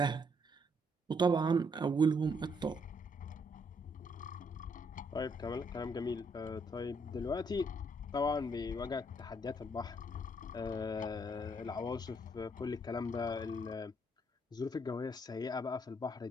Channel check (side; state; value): both; normal; correlation 0.71